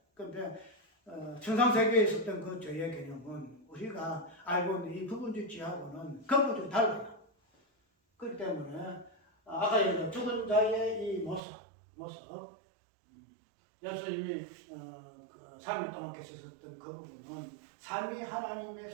그런데 천상세계에 있었던 그 죄의 개념은 우리가 알고 있는 이 부분적 죄하고는 근본적으로 달라요. 그렇기 때문에 아까 얘기한 죽은 자의 이 모습 예수님이 그 3일 동안 계셨던 그 부분은 삼위 하나님의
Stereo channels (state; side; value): drops out; left; at 11.4 s